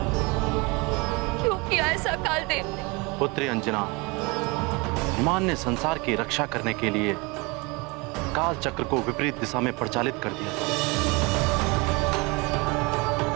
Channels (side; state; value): left; quieter; 26.9 dB